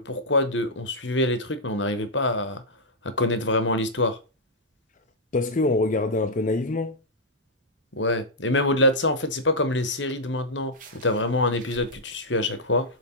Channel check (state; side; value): normal; both; correlation -0.06